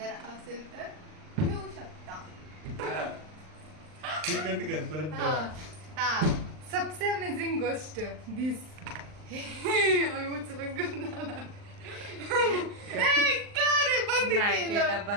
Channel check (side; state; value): left; late; 39 ms